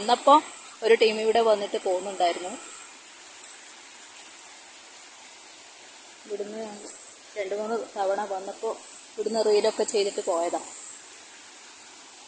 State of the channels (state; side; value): identical; both; correlation 1.00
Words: ഒരു ടീം ഇവിടെ വന്നിട്ട് പോകുന്നുണ്ടായിരുന്നു. ഇവിടുന്ന് 2-3 തവണ വന്നപ്പോൾ ഇവിടുന്ന് റീലൊക്കെ ചെയ്തിട്ട് പോയതാണ്.